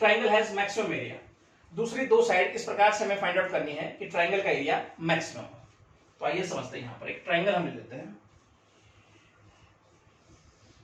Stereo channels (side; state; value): both; identical; correlation 1.00